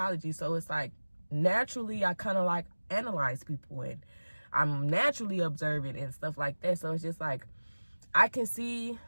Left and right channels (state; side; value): inverted; both; correlation -1.00